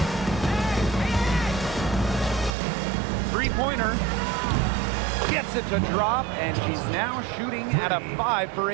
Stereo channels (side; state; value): left; drops out; at 2.6 s